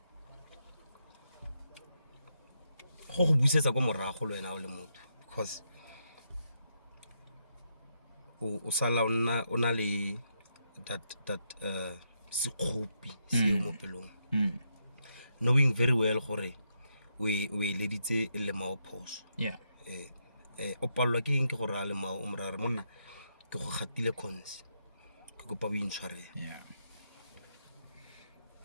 Go busetsa kwa morago le wena o le motho because o sala ona le that sekgopi se mo pelong. Knowing very well gore we leditse le mao phoso. Yeah. O palwa ke eng ke gore a le mao o morare monna ke go gatile cons ke kopa bo intshwarela.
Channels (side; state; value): both; inverted; correlation -0.81